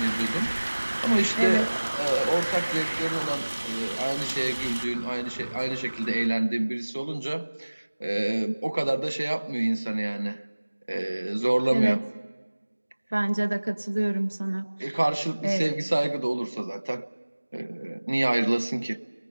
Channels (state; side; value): inverted; both; correlation -1.00